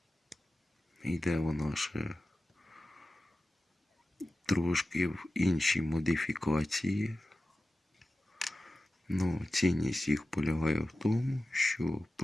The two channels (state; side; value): normal; both; correlation 0.95